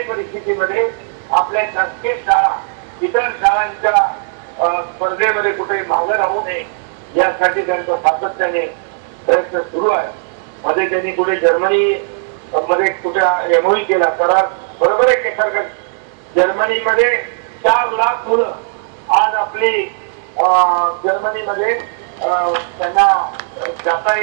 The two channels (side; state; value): left; silent; digital silence